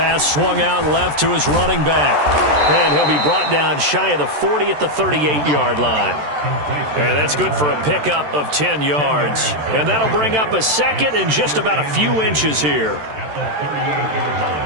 swung out left to his running back. And he'll be brought down shy of the 40 at the 38-yard line. And that's good for a pickup of 10 yards. And that'll bring up a second and just about a few inches here.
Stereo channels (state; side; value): late; left; 13 ms